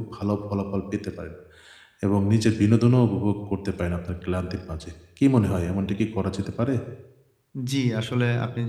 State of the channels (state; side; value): identical; both; correlation 1.00